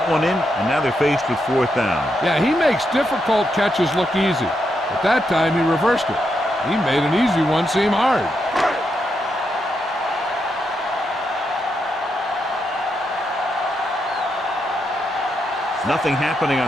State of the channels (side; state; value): both; normal; correlation 0.82